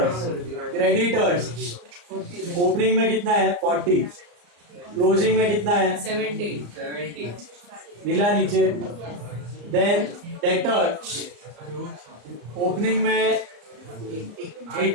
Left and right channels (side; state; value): left; late; 34 ms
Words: ओपनिंग में कितना है 40, क्लोजिंग में कितना है 70 मिला नीचे। देन डेटर्स ओपनिंग में